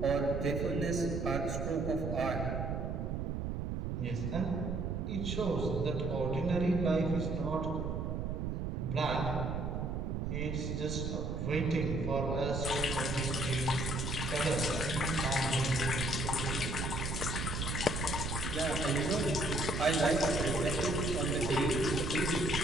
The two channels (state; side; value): noise; right; rumble, 2 dB below the sound